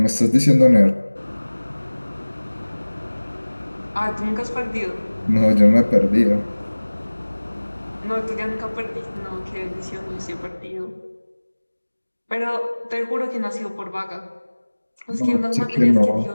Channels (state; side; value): inverted; both; correlation -1.00